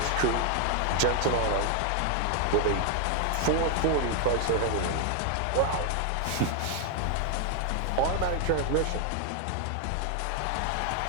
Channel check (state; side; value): different; both; correlation 0.00